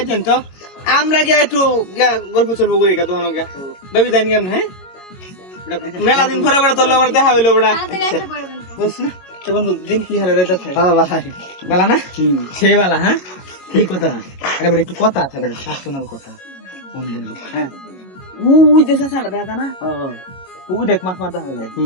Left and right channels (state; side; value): late; right; 22 ms